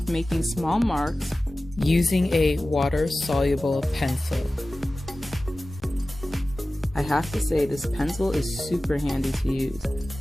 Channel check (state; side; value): normal; both; correlation 0.96